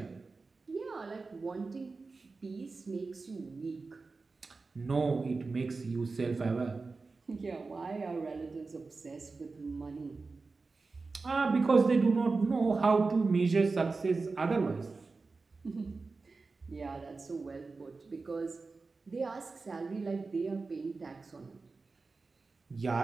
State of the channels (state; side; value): quieter; left; 4.0 dB